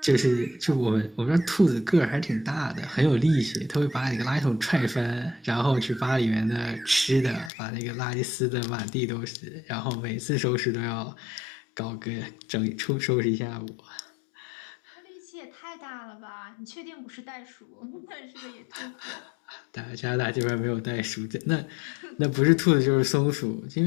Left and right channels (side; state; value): right; drops out; at 7.5 s